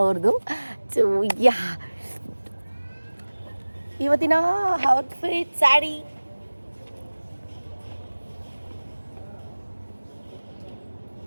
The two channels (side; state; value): both; inverted; correlation -1.00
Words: ಅವ್ರದ್ದು. ಸೊ ಇವತ್ತಿನ ಔಟ್ಫಿಟ್ ಸ್ಯಾರಿ